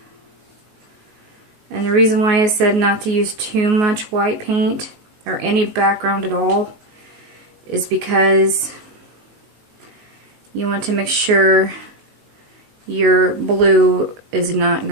And the reason why I said not to use too much white paint or any background at all is because you want to make sure your blue is not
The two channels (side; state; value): left; late; 19 ms